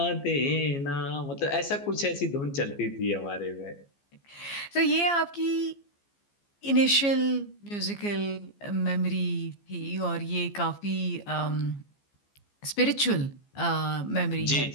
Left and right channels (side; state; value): right; late; 15 ms